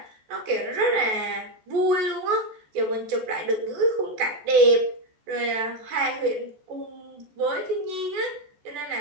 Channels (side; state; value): left; late; 14 ms